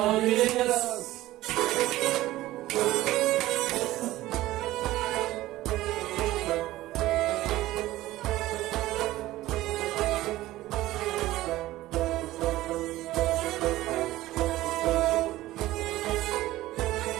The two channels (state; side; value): quieter; left; 16.4 dB